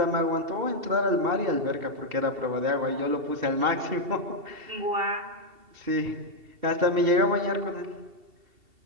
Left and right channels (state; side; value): late; left; 2.7 ms